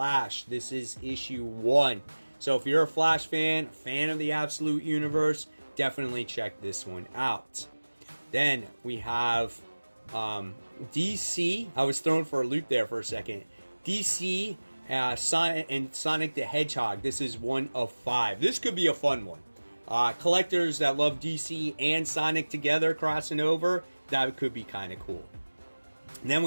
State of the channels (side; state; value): both; inverted; correlation -1.00